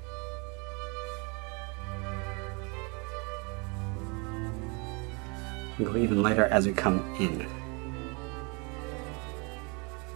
And go even lighter as we come in.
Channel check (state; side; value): quieter; left; 31.5 dB